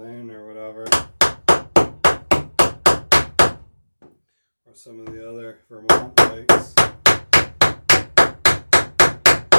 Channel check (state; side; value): inverted; both; correlation -1.00